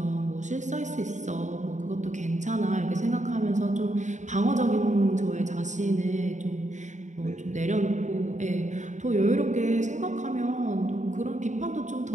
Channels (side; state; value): left; late; 0.35 ms